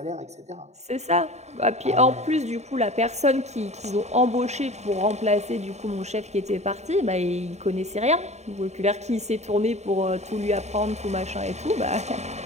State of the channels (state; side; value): late; left; 0.32 ms